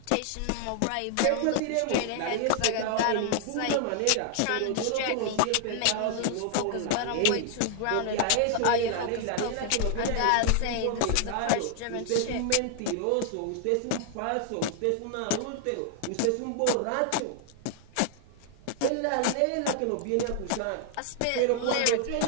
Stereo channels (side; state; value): both; different; correlation 0.00